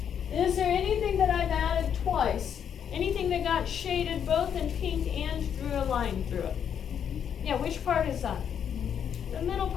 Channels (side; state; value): right; quieter; 8.3 dB